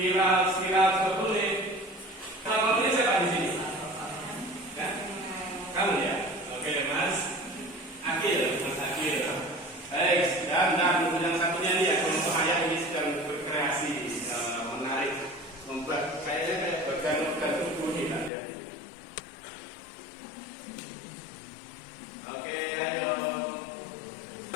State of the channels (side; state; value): right; drops out; at 18.3 s